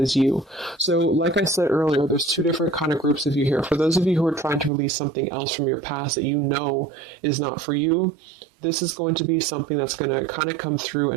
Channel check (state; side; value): drops out; left; at 4.7 s